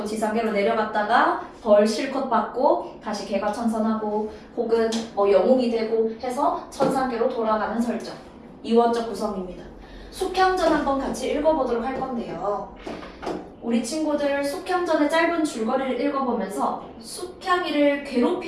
지상계로 내려갔다가 벌 실컷 받고 다시 개가천선하고 혹은 영웅이 되고 해서 천상계로 돌아가는 설정. 이원적 구성입니다. 숙향전 한번 같이 읽어보도록 할 건데요. 우리 친구들 숙향전의 짧은 줄거리를 읽어보면서 숙향이를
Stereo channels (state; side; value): identical; both; correlation 1.00